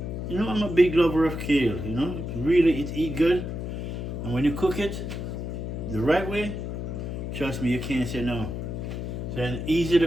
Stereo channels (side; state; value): left; noise; hum, 5 dB below the sound